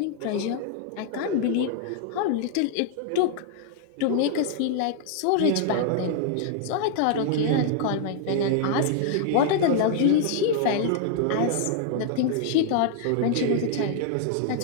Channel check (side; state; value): both; different; correlation -0.01